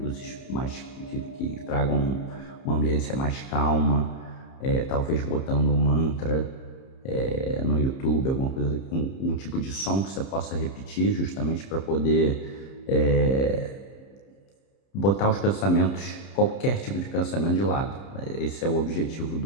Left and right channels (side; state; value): right; late; 30 ms